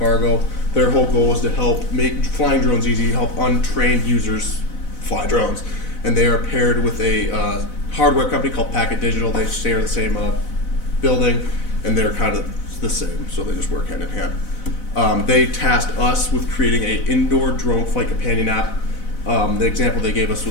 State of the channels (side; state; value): right; late; 4.0 ms